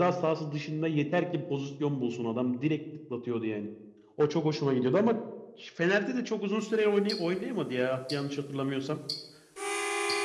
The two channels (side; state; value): both; identical; correlation 1.00